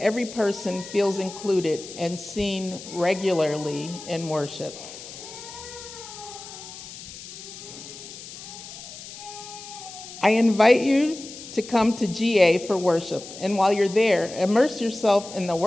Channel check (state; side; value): noise; left; hiss, 14 dB below the sound